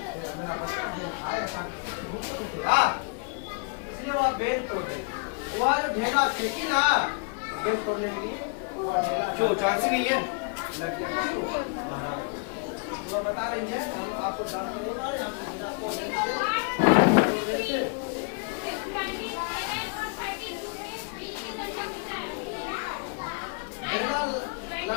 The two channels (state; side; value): quieter; right; 36.5 dB